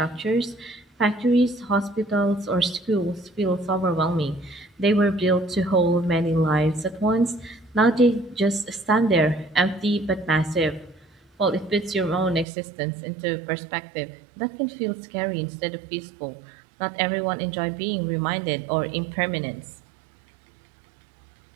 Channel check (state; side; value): drops out; left; at 12.5 s